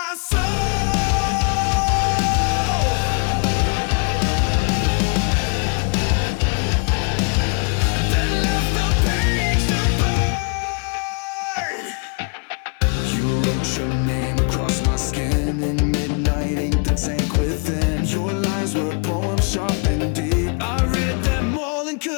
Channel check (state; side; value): quieter; right; 36.1 dB